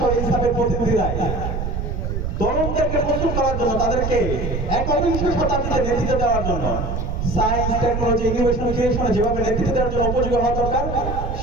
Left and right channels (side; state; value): right; noise; rumble, 3 dB below the sound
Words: ইনসাফের প্রতিনিধিরাই তরুণদেরকে প্রস্তুত করার জন্য, তাদেরকে একবিংশ শতাব্দীতে নেতৃত্ব দেওয়ার জন্য, সায়েন্স, টেকনোলজি, ইনোভেশন, ক্রিয়েশনে যেভাবে নেতৃত্ব দেওয়ার জন্য উপযোগী হওয়া দরকার,